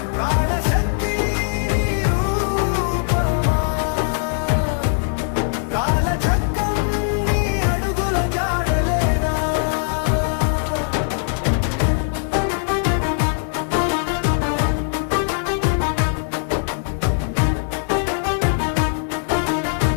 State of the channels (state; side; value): silent; right; digital silence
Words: ప్రాణశక్తి నీ రూపమా కాలచక్రం నీ అడుగుల జాడలేనా